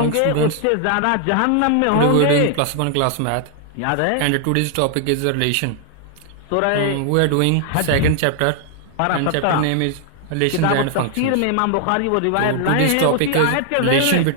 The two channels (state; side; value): different; both; correlation 0.00